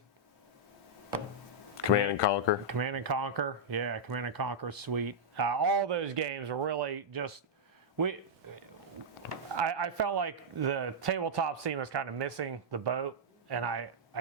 Command and Conquer. Command and Conquer, yeah, Command and Conquer is sweet. All those games are really just I felt like the tabletop scene was kind of missing the boat, and I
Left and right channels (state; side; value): normal; both; correlation -0.07